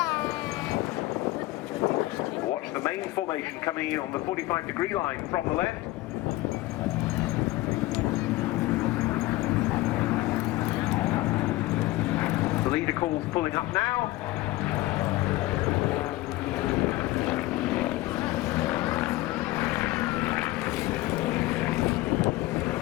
Watch the main formation coming in on the 45-degree line from the left. The leader calls pulling up now.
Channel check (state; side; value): quieter; right; 18.3 dB